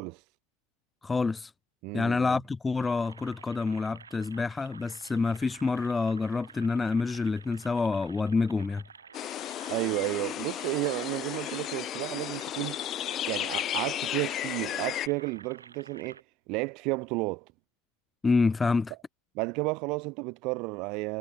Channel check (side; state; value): both; normal; correlation 0.65